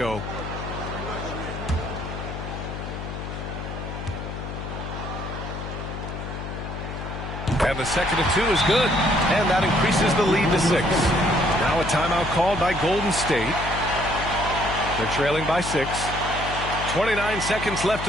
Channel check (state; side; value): noise; left; hum, 7 dB below the sound